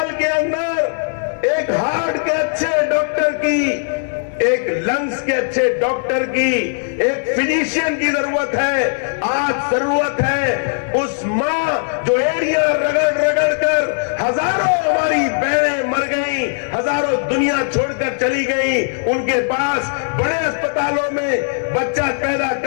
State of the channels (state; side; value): silent; right; digital silence